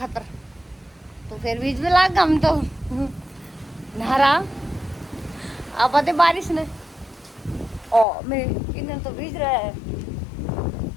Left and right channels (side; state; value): right; drops out; at 8.1 s